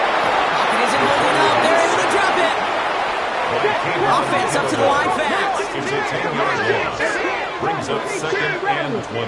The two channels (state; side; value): identical; both; correlation 1.00